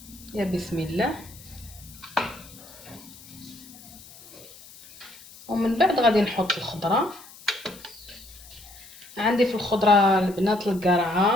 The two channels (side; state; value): left; noise; hiss, 20 dB below the sound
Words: يا بسم الله. ومن بعد غادي نحط الخضره. عندي في الخضره البنات